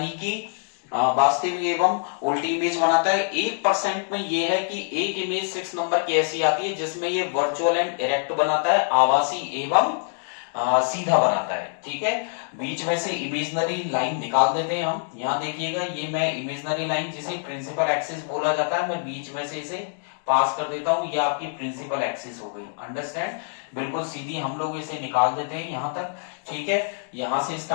कि वास्तविक एवं उल्टी इमेज बनाता है। 1% में ये है कि एक इमेज 6 नंबर की ऐसी आती है जिसमें ये वर्चुअल एंड इरेक्ट बनाता है, आभासी एवं सीधा बनाता है, ठीक है। बीच में से इमेजनरी लाइन निकाल देते हैं हम। यहां देखिएगा, ये मैं इमेजनरी लाइन जिसे प्रिंसिपल एक्सिस बोला जाता है, मैं बीच में से इसे पास कर देता हूं, ये आपकी प्रिंसिपल एक्सिस हो गई, अंडरस्टैंड। बिल्कुल सीधी हम लोग इसे निकाल देते हैं यहां तक, ठीक है। यहां से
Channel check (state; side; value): silent; right; digital silence